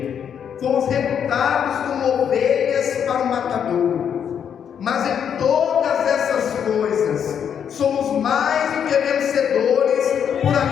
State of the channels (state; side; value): quieter; right; 8.2 dB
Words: fomos reputados como ovelhas para o matadouro. Mas em todas essas coisas somos mais do que vencedores por